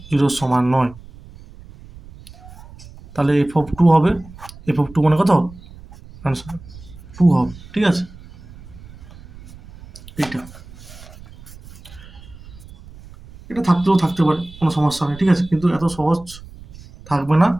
0 সমান নয়, তাহলে এফ অফ 2 হবে, এফ অফ 2 মানে কত, আনসার 2 হবে, ঠিক আছে, এইটা এটা থাকতেও থাকতে পারে, কোনো সমস্যা নেই, ঠিক আছে, কিন্তু এত সহজ থাকবে না।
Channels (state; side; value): noise; right; rumble, 19 dB below the sound